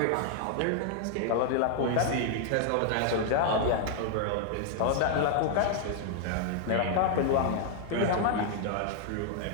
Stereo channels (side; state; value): both; different; correlation 0.00